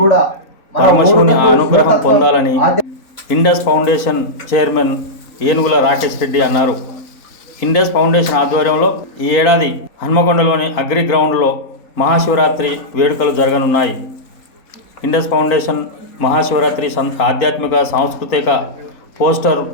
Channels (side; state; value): right; late; 3.9 ms